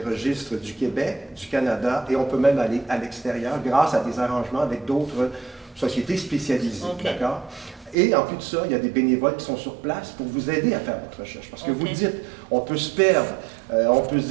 registres du Québec, du Canada, et on peut même aller à l'extérieur grâce à des arrangements avec d'autres sociétés spécialisées. Ok. D'accord? Et en plus de ça, il y a des bénévoles qui sont sur place pour vous aider à faire votre recherche. Parce que OK. vous dites, on peut se perdre, on peut se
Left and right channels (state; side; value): drops out; left; at 8.0 s